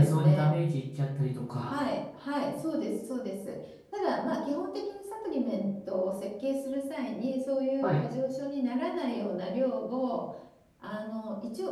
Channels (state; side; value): identical; both; correlation 1.00